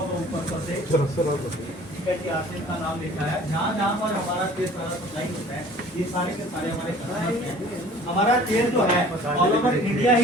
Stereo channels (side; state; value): both; normal; correlation 0.49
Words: ऊपर से, ठीक है जी, आसिफ का नाम लिखा है। जहाँ पर हमारा तेल सारा सप्लाई होता है, ये सारे के सारे हमारे कस्टमर्स हैं। हमारा तेल जो है ऑल ओवर इंडिया